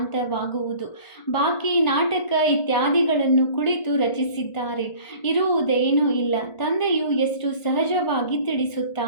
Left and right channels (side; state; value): right; late; 1.5 ms